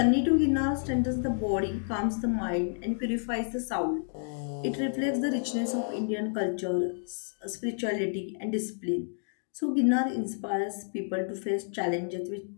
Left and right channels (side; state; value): right; silent; digital silence